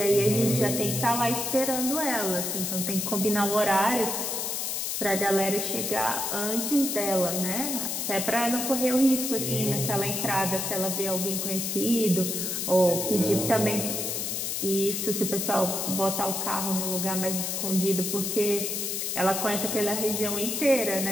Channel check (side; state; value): left; noise; hiss, 2 dB below the sound